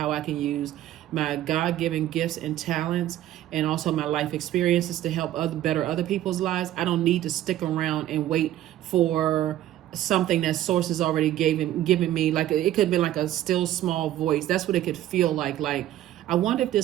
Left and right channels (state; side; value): quieter; left; 13.2 dB